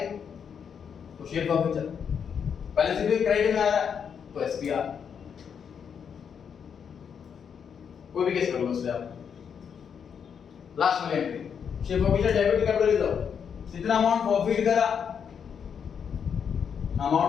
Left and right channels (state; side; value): quieter; right; 7.3 dB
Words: तो शेयर प्रॉफिट चल, बैलेंसिंग फिगर क्रेडिट में आ रहा है तो एसपीआर। कोई भी केस कर लो उससे आप। लास्ट वाली entry share profit debit capital reserve, जितना अमाउंट प्रॉफिट करा,